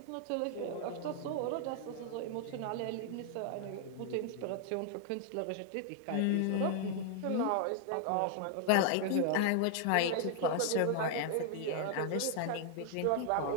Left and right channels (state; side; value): different; both; correlation 0.00